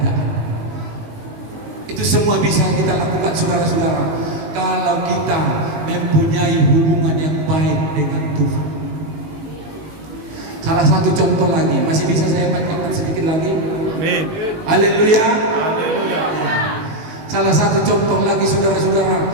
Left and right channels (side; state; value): left; late; 19 ms